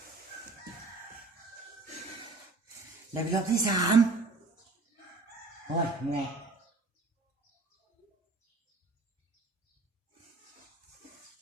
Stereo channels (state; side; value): quieter; left; 3.4 dB